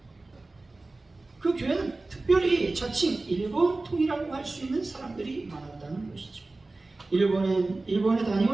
그 교회는 특별히 자칭 일본통이라고 할 수 있는 사람들이 많았다는 것이죠. 일본에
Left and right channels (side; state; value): left; quieter; 3.2 dB